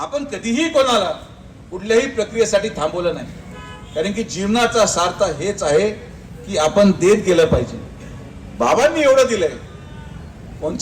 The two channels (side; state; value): both; identical; correlation 1.00